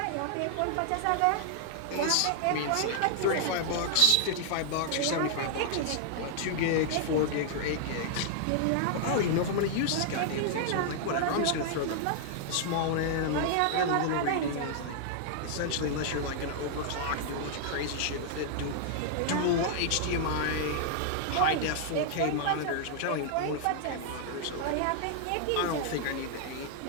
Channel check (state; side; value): different; both; correlation -0.01